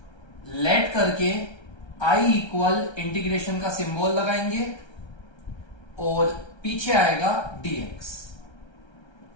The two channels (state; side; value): late; right; 1.3 ms